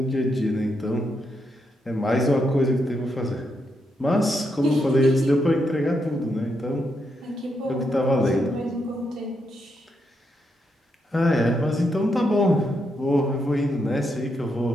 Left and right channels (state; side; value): normal; both; correlation 0.81